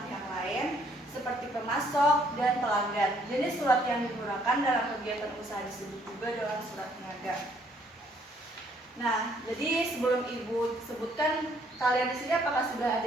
pihak lain seperti pemasok dan pelanggan. Jenis surat yang digunakan dalam kegiatan usaha disebut juga dengan surat niaga. Nah, jadi sebelum Ibu sebutkan, kalian di sini apakah sudah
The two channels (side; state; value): both; normal; correlation 0.65